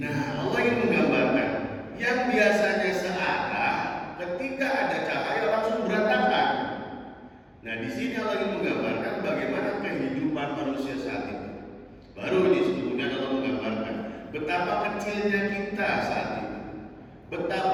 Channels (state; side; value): identical; both; correlation 1.00